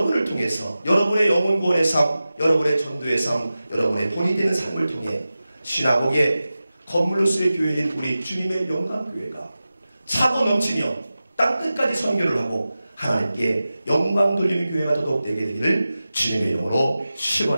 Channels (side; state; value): both; inverted; correlation -0.95